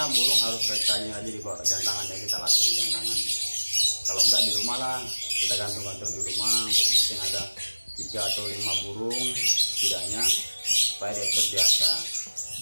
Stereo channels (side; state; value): both; inverted; correlation -1.00